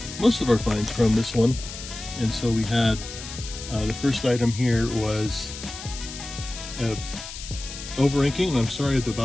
most of our finds from this one. And so we had, the first item here was over-inking, and I'm sorry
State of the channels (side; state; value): left; noise; hiss, 11 dB below the sound